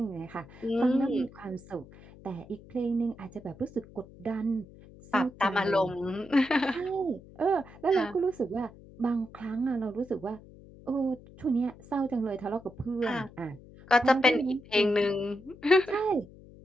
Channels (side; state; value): left; noise; hum, 21 dB below the sound